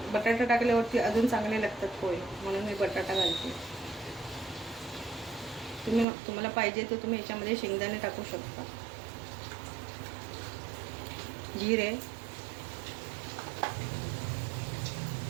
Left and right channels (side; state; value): left; drops out; at 6.1 s